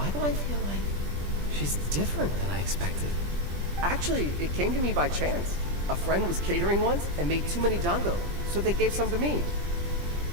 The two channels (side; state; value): left; late; 20 ms